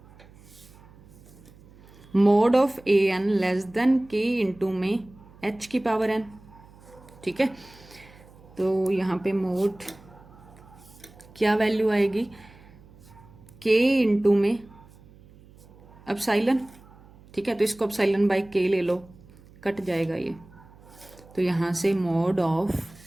mod of a N less than k into में h की पावर n। ठीक है, तो यहाँ पे मोड क्या वैल्यू आएगी, k इंटू में अपसाइलन। ठीक है, तो इसको अपसाइलन बाई k ले लो, कट जाएगा ये, तो यहाँ से mod of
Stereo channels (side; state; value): right; noise; hum, 24 dB below the sound